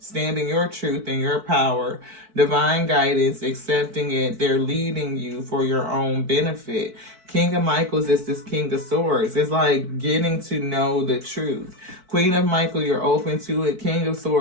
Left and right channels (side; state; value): left; late; 4.5 ms